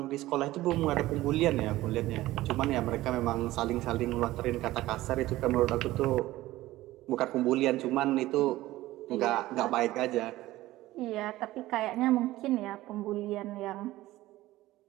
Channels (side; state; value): left; quieter; 16.8 dB